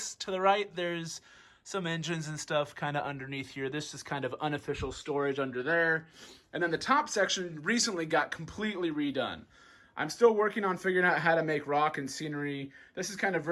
to the right there's some engines and stuff kind of underneath here. This is kind of unofficial storage under there. And then the top section recently got completely redone. I'm still working on figuring out how to make rock and scenery. This is kind of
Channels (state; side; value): identical; both; correlation 1.00